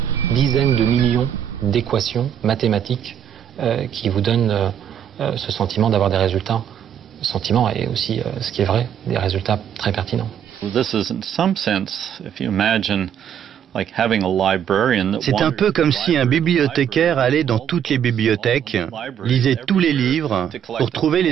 dizaines de millions d'équations mathématiques qui vous donnent ce sentiment d'avoir des résultats, sentiment et aussi, ce qui est vrai, des résultats très pertinents. This is in some sense, if you imagine C'est un peu comme si un bibliothécaire allait dans toutes les bibliothèques, lisait tous les livres pour trouver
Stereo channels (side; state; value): left; quieter; 9.1 dB